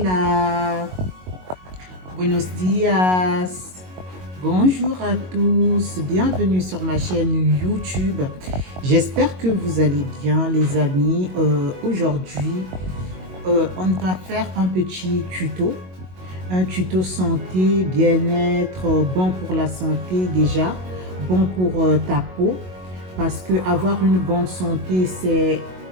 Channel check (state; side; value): late; left; 22 ms